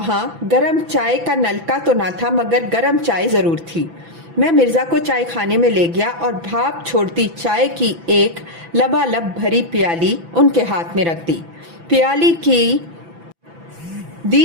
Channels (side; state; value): left; late; 6.0 ms